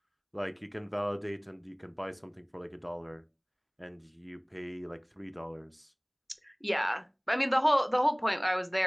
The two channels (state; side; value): identical; both; correlation 1.00